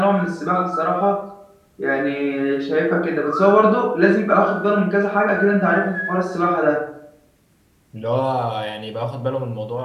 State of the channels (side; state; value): both; identical; correlation 1.00